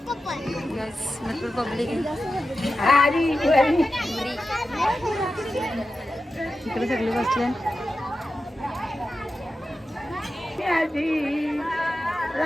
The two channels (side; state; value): both; normal; correlation 0.92